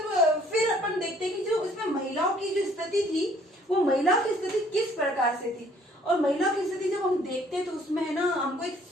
अपन देखते हैं कि जो इसमें महिलाओं की जो स्थिति थी, वो महिलाओं की स्थिति किस प्रकार से थी, और महिलाओं की स्थिति जब हम देखते हैं तो उसमें है ना, हमको एक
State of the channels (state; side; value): normal; both; correlation 0.60